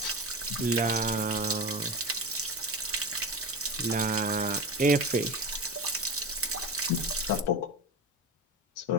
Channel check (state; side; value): normal; both; correlation 0.25